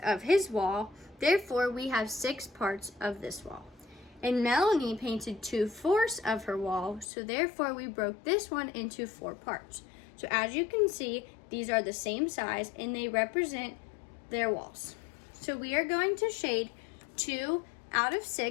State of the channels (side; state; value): right; drops out; at 7.1 s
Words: of his wall, therefore we have 6 parts of this wall. And Melanie painted 2/4 of her wall, so therefore we broke this one into 4 parts. So as you can see, these are the same size and they represent their walls. So we are going to shade 2 out of